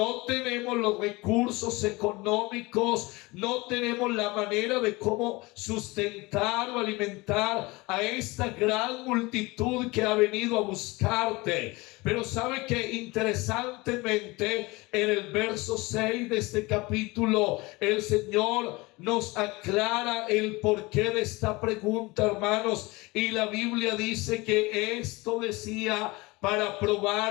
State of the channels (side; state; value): right; quieter; 23.2 dB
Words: tenemos los recursos económicos, no tenemos la manera de cómo sustentar o alimentar a esta gran multitud que ha venido a buscarte. Pero sabe que interesantemente en el verso 6 de este capítulo el Señor nos aclara el porqué de esta pregunta, hermanos, y la Biblia dice que esto decía para